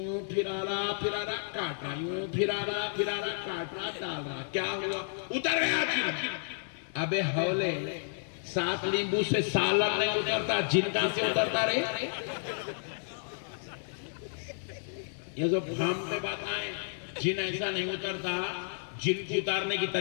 پھرا رہا کاٹ رہا، یوں پھرا رہا کاٹ رہا ڈال رہا. کیا ہوا؟ اتر گیا جن. ابے ہولے 7 لیمبو سے سالن نہیں اترتا، جن کہاں سے اترتا رہے؟ یہ جو بھام پہ بات آئے جن ایسا نہیں اترتا. جن کو اتارنے کی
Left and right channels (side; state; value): right; silent; digital silence